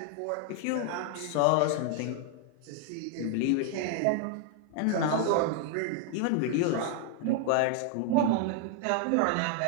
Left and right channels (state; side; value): different; both; correlation 0.00